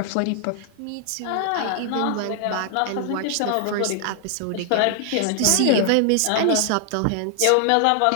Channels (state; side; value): different; both; correlation 0.00